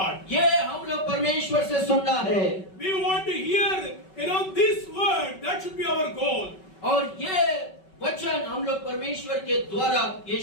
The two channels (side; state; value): right; late; 5.3 ms